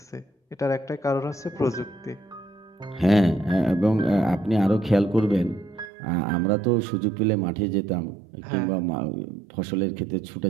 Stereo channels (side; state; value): left; drops out; at 5.9 s